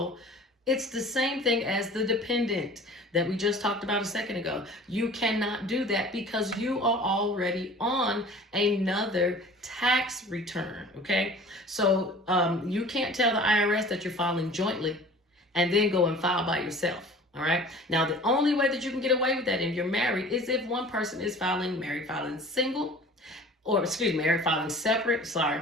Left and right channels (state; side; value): normal; both; correlation 0.45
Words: it's the same thing as the dependent that we just talked about a second ago. You cannot do that because you are already on another tax return, okay? So you can't tell the IRS that you're filing jointly and then go and file by yourself, all right? Now, the only way that you can get away with that if you're married is if one person is married filing single, or married filing separate. Sorry,